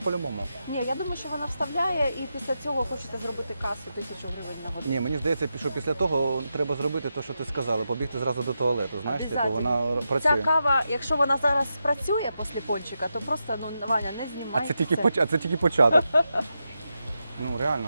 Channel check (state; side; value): inverted; both; correlation -0.87